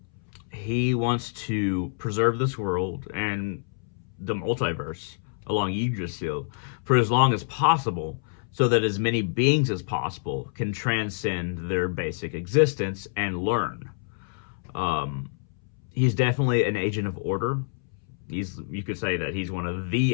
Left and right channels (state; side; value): silent; right; 60 dB below the other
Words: He wants to preserve this world and the multiverse along Yggdrasil for as long as possible, so that as many beings as possible can transcend their basic existence and learn. Um, he's definitely an agent of order. You could say that he's one of the